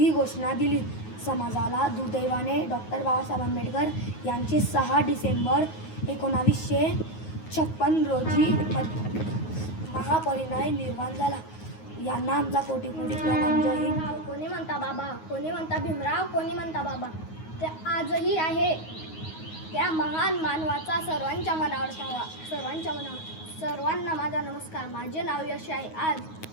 घोषणा दिली. समाजाला दुर्दैवाने डॉक्टर बाबासाहेब आंबेडकर यांचे 6 डिसेंबर 1956 रोजी महापरिनिर्वाण झाला. यांना आमचा कोटी कोटी प्रणाम. जय हिंद. कोणी म्हणता बाबा, कोणी म्हणता भीमराव, कोणी म्हणता बाबा. ते आजही आहे. त्या महान मानवाचा सर्वांच्या मनावर ठावा, सर्वांच्या मनावर. सर्वांना माझा नमस्कार. माझे नाव यश आहे. आज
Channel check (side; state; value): right; late; 9.4 ms